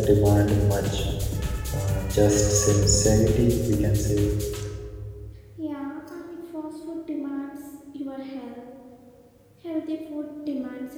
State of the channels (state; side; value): identical; both; correlation 1.00